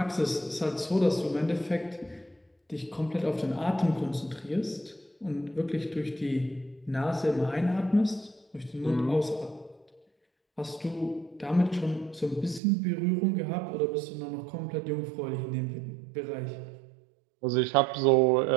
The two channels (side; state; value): left; drops out; at 12.6 s